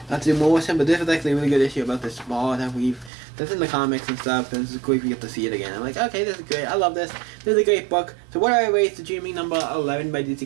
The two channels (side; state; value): left; drops out; at 3.1 s